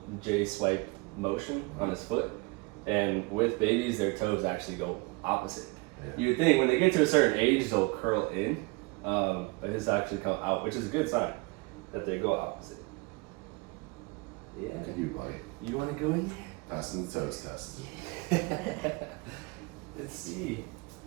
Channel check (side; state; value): left; quieter; 27.4 dB